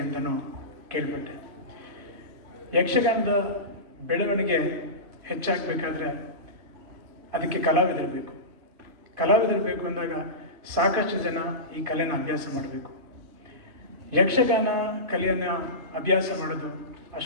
ಅಂತಲೂ ಕೇಳ್ಪಟ್ಟೆ. ಯಕ್ಷಗಾನದ ಬೆಳವಣಿಗೆ ಹೆಚ್ಚಾಗಬೇಕಾದ್ರೆ ಅದಕ್ಕೆ ಕಲಾವಿದರು ಬೇಕು. ಕಲಾವಿದರು ಬೇಕು ಅಂದಾಗ ಸಾಕಷ್ಟು ಜನ ಈ ಕಲೆನ ಅಭ್ಯಾಸ ಮಾಡಬೇಕು. ಯಕ್ಷಗಾನ ಕಲೆಯನ್ನು ಅಭ್ಯಾಸ ಮಾಡೋದು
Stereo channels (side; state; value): left; late; 3.1 ms